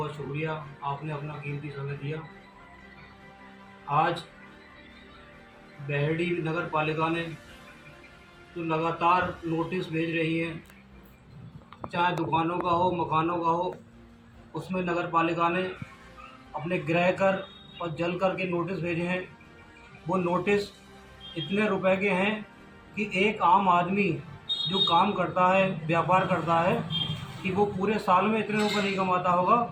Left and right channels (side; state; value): both; identical; correlation 1.00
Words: शुक्रिया, आपने अपना कीमती समय दिया। आज बहेड़ी नगर पालिका ने तो लगातार नोटिस भेज रही है, चाहे दुकानों का हो मकानों का हो, उसमें नगर पालिका ने अपने ग्रह कर और जल कर के नोटिस भेजे हैं। वो नोटिस इतने रुपए के हैं कि एक आम आदमी जो काम करता है, व्यापार करता है, कि वो पूरे साल में इतने रुपए नहीं कमाता होगा